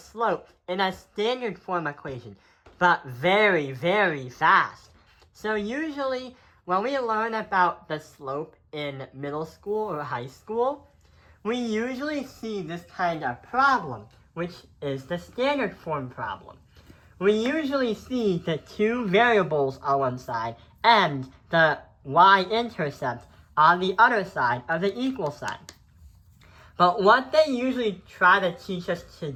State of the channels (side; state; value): both; identical; correlation 1.00